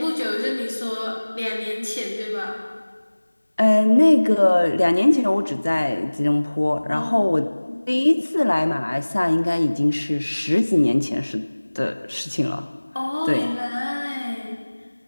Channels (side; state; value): both; inverted; correlation -1.00